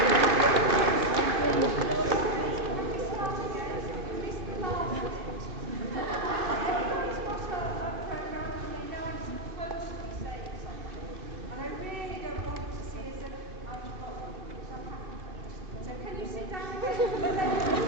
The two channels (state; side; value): late; left; 2.5 ms